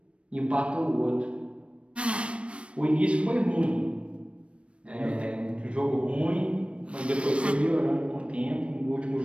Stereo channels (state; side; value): late; left; 0.060 ms